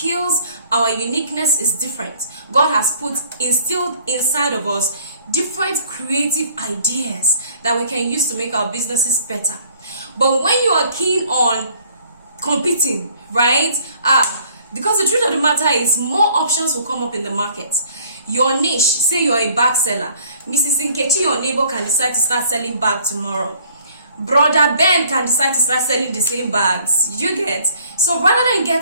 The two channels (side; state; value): both; inverted; correlation -0.57